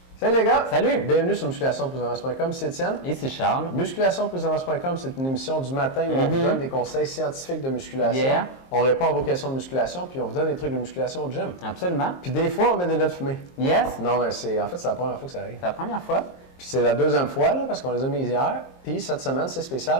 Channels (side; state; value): right; late; 22 ms